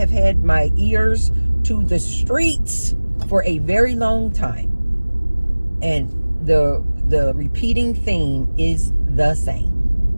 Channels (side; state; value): both; inverted; correlation -1.00